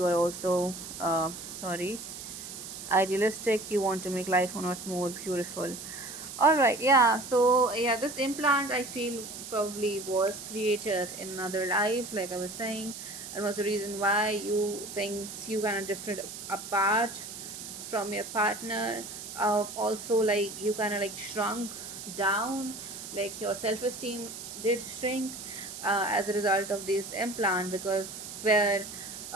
are also, idealistic. You want to make life on earth more beautiful. All right, yeah. So yeah, this implant I feel probably was created in another life, like I was saying, and was the reason why you things you kind of drifted apart from your partner. Also, like you kind of like shrunk down, like your self-esteem did shrink as a result of this implant, because where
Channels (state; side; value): noise; right; hiss, 10 dB below the sound